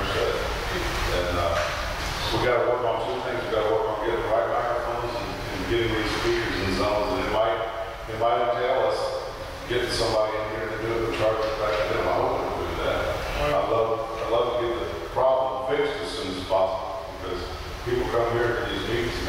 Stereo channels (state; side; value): identical; both; correlation 1.00